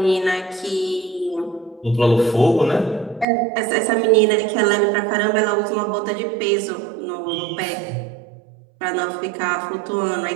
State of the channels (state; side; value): drops out; left; at 3.2 s